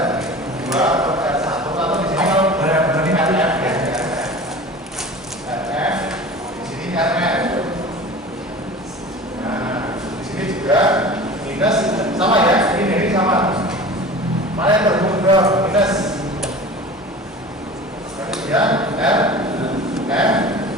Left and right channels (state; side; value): normal; both; correlation 0.38